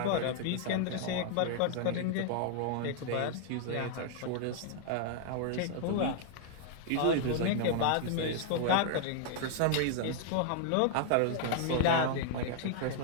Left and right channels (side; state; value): both; different; correlation 0.00